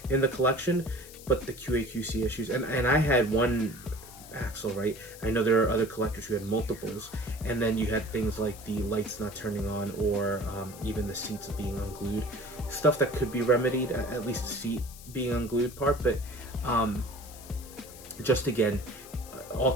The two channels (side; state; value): left; noise; hiss, 17 dB below the sound